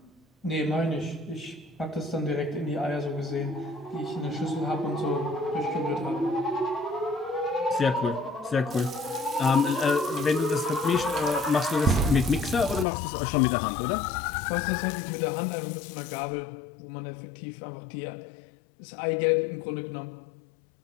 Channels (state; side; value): drops out; right; at 12.9 s